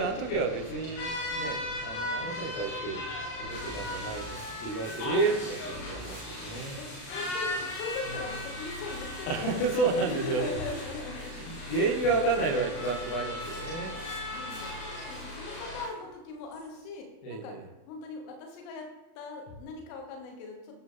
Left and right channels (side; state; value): right; late; 36 ms